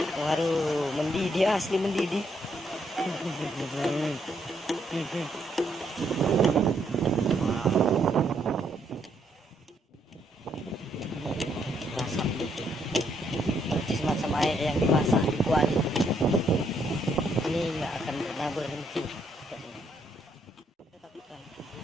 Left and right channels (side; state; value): both; normal; correlation 0.73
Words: Waduh, mendidih, asli mendidih. Masak, berarti semacam air yang dimasak di kuali. Ini nggak akan pernah berhenti.